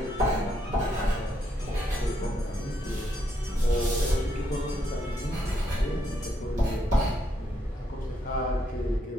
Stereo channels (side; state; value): both; normal; correlation 0.76